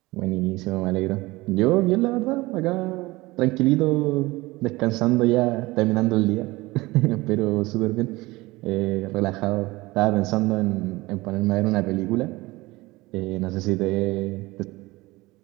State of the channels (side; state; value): left; quieter; 20.9 dB